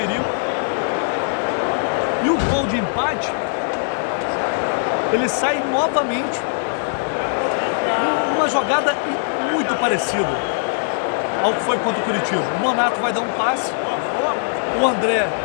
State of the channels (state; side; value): silent; right; digital silence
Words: E o gol de empate, ele sai novamente numa jogada muito parecida ao que foi contra o Curitiba. O Nonato vai dar um passe, o André